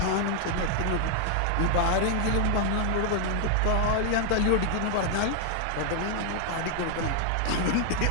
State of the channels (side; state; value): both; different; correlation 0.00